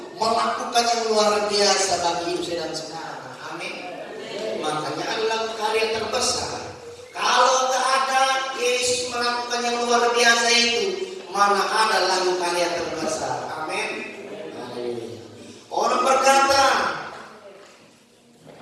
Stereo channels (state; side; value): identical; both; correlation 1.00